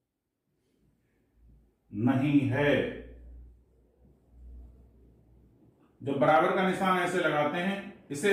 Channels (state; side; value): identical; both; correlation 1.00